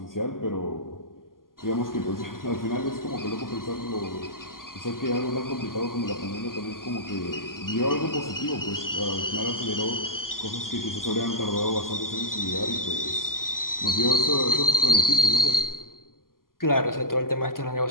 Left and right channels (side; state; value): right; late; 0.91 ms